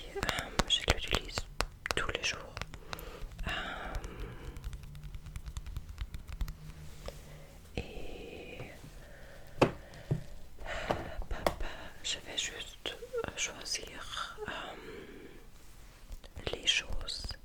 Je l'utilise tous les jours. Et je vais juste choisir les choses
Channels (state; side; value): identical; both; correlation 1.00